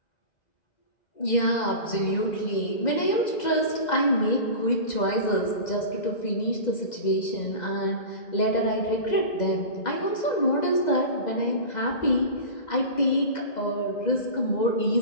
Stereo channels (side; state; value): right; late; 2.0 ms